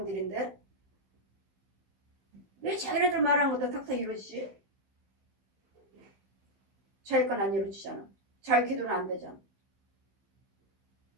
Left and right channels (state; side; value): late; left; 16 ms